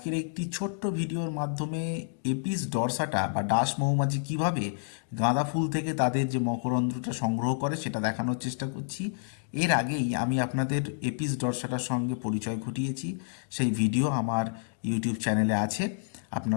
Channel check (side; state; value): right; silent; digital silence